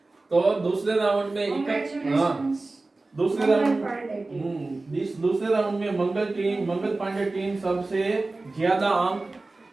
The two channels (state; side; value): quieter; left; 3.3 dB